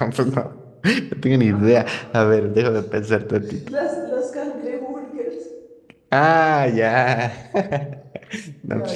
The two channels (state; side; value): identical; both; correlation 1.00